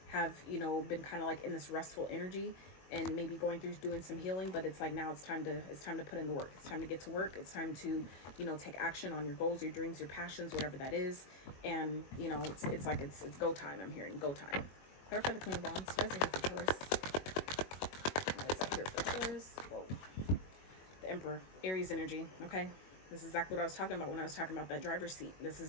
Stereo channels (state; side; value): late; right; 22 ms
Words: have, you know, been kind of like in this restful energy and maybe going through doing some healing, but it's like now it's time to put in the work. It's time to get to work. It's time to, you know, take action on your goals, your dreams, your passions, whatever that is. And, you know, it's like it's go time. I'm hearing go time. Clarify the Queen of Wands. You guys are here for Taurus. Why is that here for Taurus? Whoa. The Emperor, Aries energy. Okay, this is exactly what I was talking about when I was talking about that driver's seat. This is